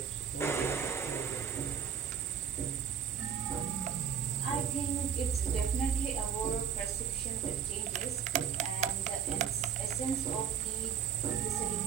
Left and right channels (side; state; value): left; quieter; 7.7 dB